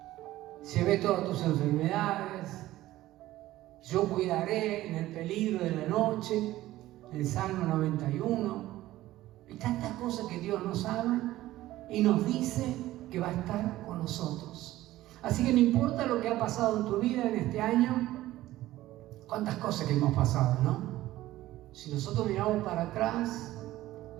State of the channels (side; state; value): left; quieter; 15.6 dB